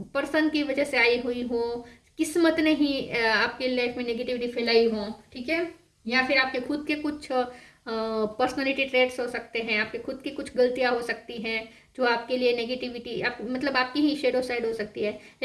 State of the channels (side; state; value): both; identical; correlation 1.00